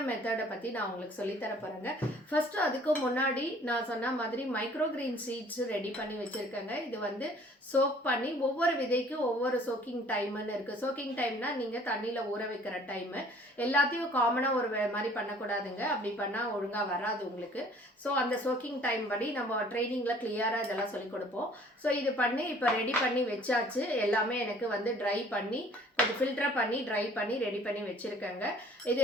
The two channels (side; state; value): both; normal; correlation 0.54